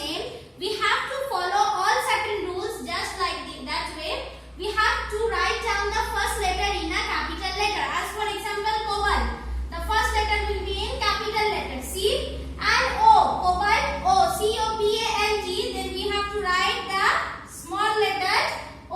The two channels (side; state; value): both; identical; correlation 1.00